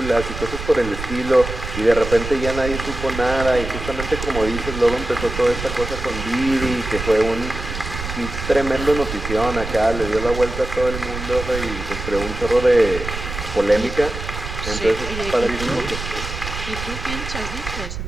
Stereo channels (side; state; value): right; noise; rumble, 7 dB below the sound